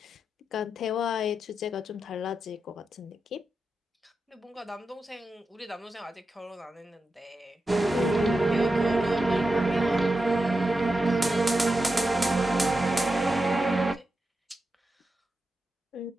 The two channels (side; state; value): both; normal; correlation 0.90